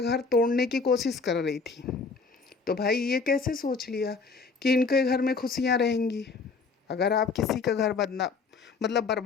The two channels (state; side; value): quieter; right; 4.6 dB